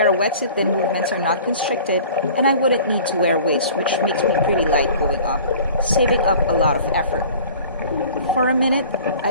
a wetsuit, then movements are not constricted, and I wouldn't need to wear weights, which makes me pretty light going up, saving up a lot of effort. For a minute, I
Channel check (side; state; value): both; inverted; correlation -0.46